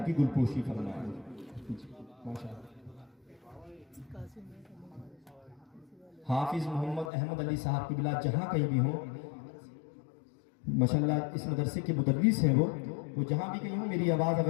की गुलपोशी फरमाए। हाफिज मोहम्मद अहमद अली साहब की बिला जहाँ कहीं भी हो, माशाल्लाह इस मदरसे के मुदर्रिस हैं वो जहाँ भी कहीं हो, मेरी आवाज़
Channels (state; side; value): drops out; right; at 7.1 s